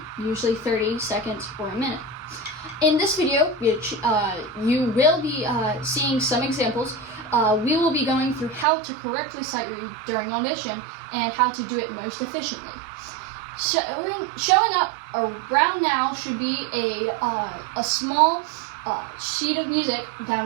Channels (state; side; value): drops out; left; at 8.7 s